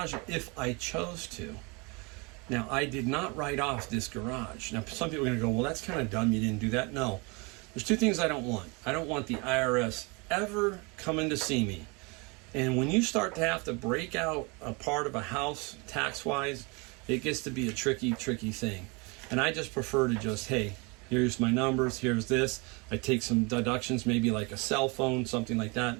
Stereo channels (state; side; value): quieter; left; 29.2 dB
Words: if I chose to. Now, I did not write off this garage. Now, some people are going to go, "Well, that's kind of dumb. You didn't do that." No. There's two things I don't want. I don't want the IRS ever coming to see me. And when you start to have to break out a part of a house tax-wise, it gets to be a tricky, tricky thing. And I just prefer to just, hey, here's my numbers, here's this. I take some deductions, maybe like a cell phone, something like